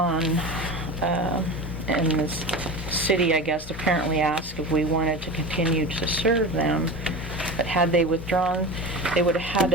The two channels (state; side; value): normal; both; correlation 0.29